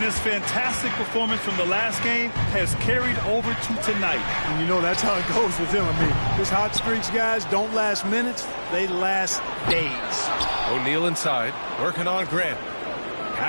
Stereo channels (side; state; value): both; inverted; correlation -1.00